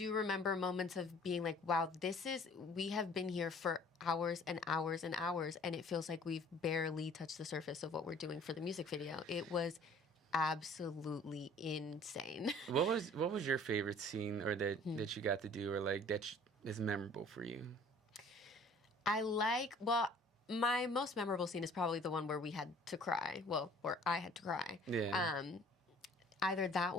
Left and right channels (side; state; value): both; normal; correlation 0.52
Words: remember moments of being wow, we have been here for hours and hours and hours, and it feels like we've barely touched the surface of what we're doing for the music video. It was absolutely insane. What was your favorite scene or that you got to do or that is memorable for you? My most memorable scene is probably the one where we had to cry. Well, where I had to cry. Yeah. Either that